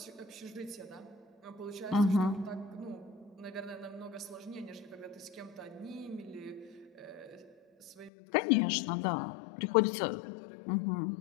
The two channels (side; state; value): right; drops out; at 8.1 s